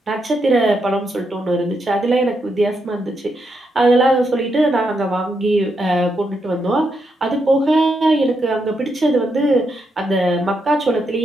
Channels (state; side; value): normal; both; correlation 0.81